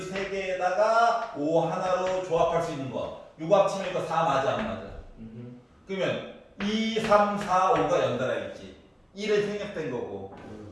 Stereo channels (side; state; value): both; identical; correlation 1.00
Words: 세 개에다가 5 하나로 조합할 수 있는 거. 요거 합치면 이거 4 맞아 안 맞아? 그러면 2, 3, 4, 5가 연달아 있지. 1은 생략된 거고.